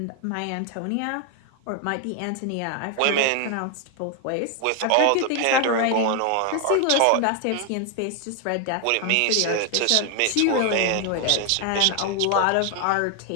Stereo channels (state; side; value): different; both; correlation 0.01